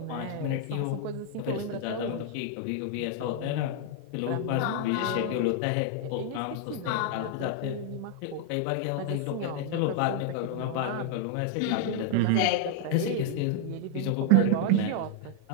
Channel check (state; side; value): different; both; correlation 0.00